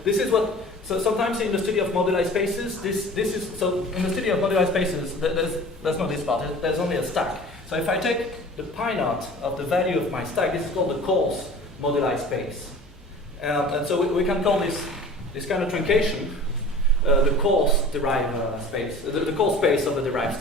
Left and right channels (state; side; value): normal; both; correlation 0.42